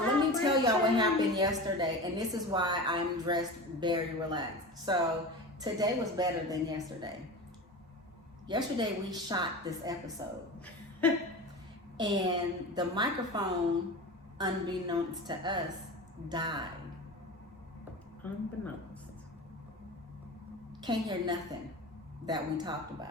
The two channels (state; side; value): normal; both; correlation 0.30